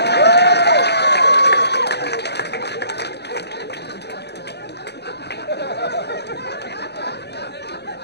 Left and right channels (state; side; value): late; right; 0.49 ms